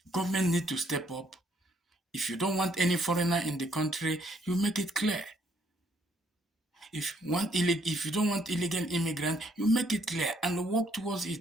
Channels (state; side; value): normal; both; correlation 0.68